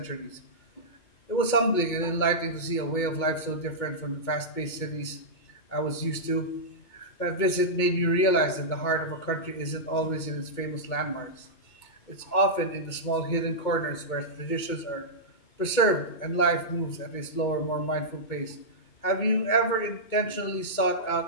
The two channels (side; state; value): right; late; 2.2 ms